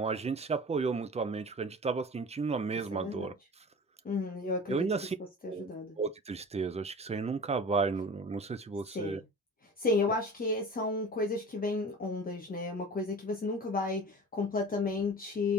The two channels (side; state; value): both; normal; correlation 0.38